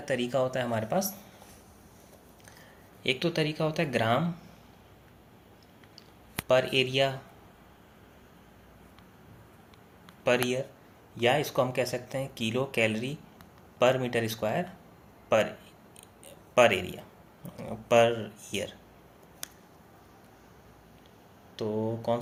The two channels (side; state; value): both; identical; correlation 1.00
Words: तरीका होता है हमारे पास, एक तो तरीका होता है ग्राम पर एरिया पर ईयर, या इसको हम कह सकते हैं किलो कैलोरी पर मीटर स्क्वायर पर एरिया पर ईयर। तो कौन